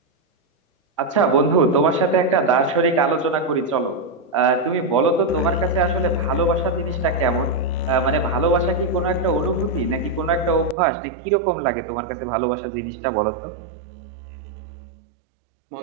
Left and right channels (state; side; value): drops out; left; at 10.8 s